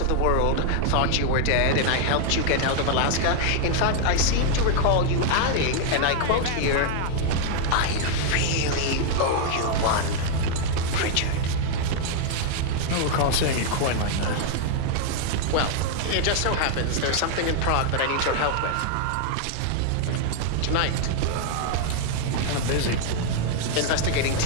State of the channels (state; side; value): different; both; correlation 0.00